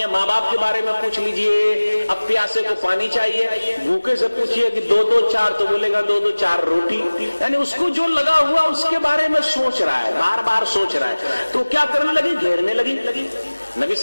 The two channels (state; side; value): inverted; both; correlation -1.00